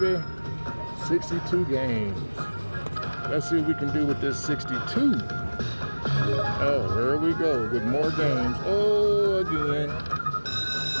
62 games. Let's see what we can do with this 62. Oh, here we go with more games. Oh, again.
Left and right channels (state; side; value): inverted; both; correlation -1.00